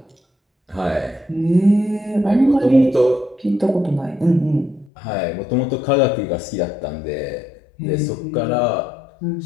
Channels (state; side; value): drops out; right; at 4.9 s